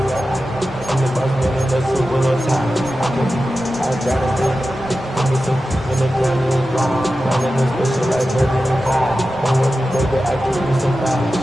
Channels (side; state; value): both; normal; correlation 0.93